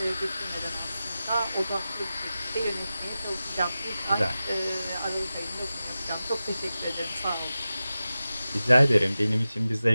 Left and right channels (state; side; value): inverted; both; correlation -0.94